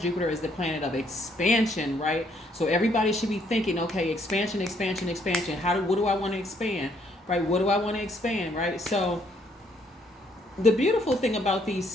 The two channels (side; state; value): both; normal; correlation 0.68